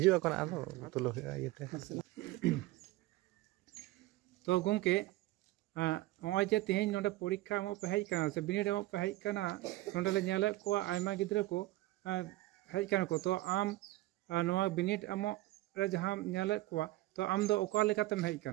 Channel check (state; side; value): quieter; left; 17.6 dB